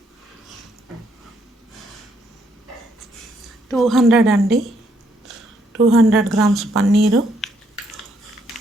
200 గ్రామ్స్ పన్నీరు,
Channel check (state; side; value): normal; both; correlation 0.72